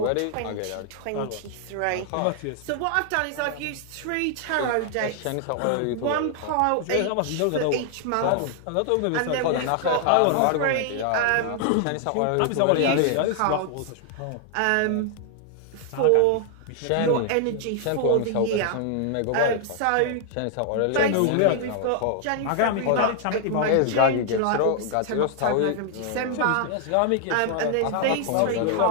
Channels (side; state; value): both; different; correlation 0.00